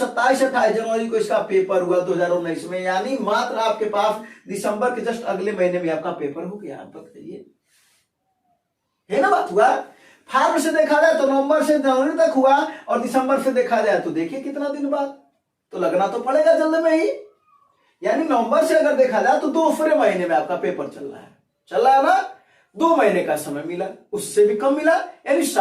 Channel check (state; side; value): identical; both; correlation 1.00